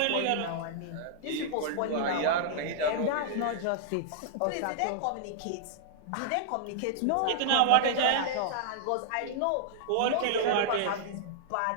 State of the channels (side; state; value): both; different; correlation -0.01